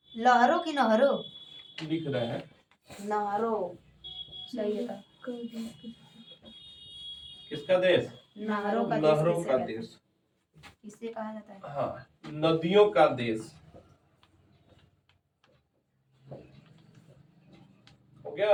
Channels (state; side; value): identical; both; correlation 1.00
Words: लहरों की नहरों लिख रहे हैं, नहरों सही है। किसका देश, नहरों का देश किसे कहा जाता है। हाँ, नदियों का देश। हो